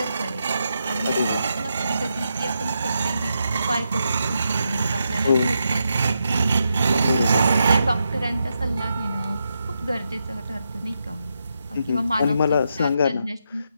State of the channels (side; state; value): both; inverted; correlation -0.83